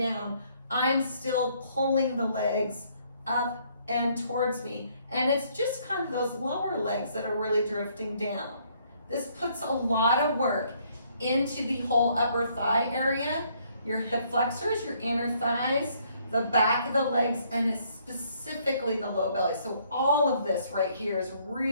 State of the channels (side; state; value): both; inverted; correlation -0.66